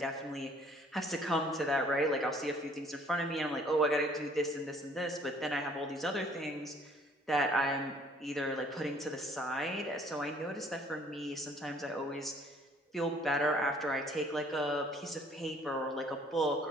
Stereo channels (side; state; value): both; normal; correlation 0.58